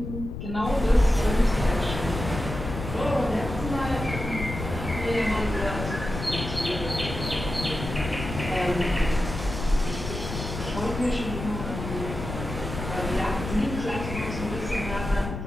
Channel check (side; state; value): left; noise; rumble, 7 dB below the sound